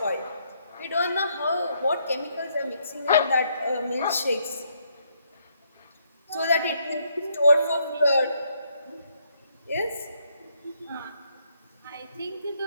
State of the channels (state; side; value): inverted; both; correlation -0.73